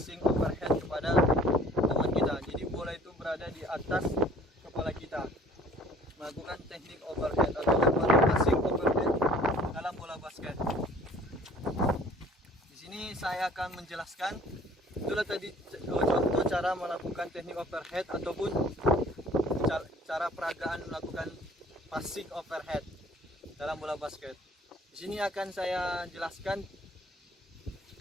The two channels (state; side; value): normal; both; correlation 0.53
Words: overhead kepada teman kita. Jadi bola itu berada di atas kepala kita. Melakukan teknik overhead atau lemparan passing overhead dalam bola basket. Di sini saya akan menjelaskan, itulah tadi contoh cara melakukan teknik overhead ataupun cara peragaan melakukan passing overhead dalam bola basket. Di sini akan saya jelaskan